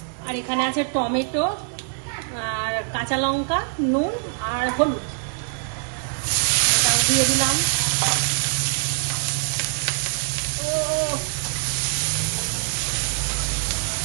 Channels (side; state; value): left; silent; digital silence